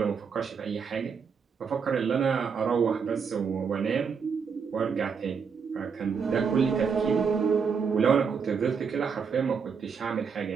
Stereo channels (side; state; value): left; quieter; 6.1 dB